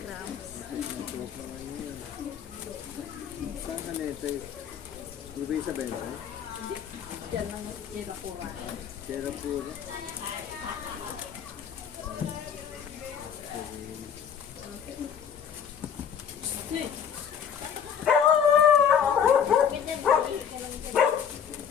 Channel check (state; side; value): quieter; right; 7.8 dB